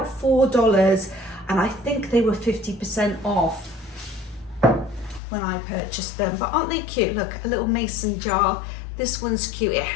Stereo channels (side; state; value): right; drops out; at 5.2 s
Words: $4, and I think they were 50% off when I purchased them. But aren't they cute? Look, a little mason jar. This one's cute. It